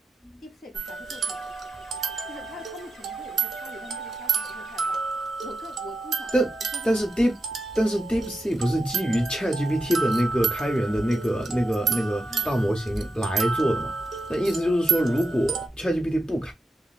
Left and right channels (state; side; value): normal; both; correlation 0.88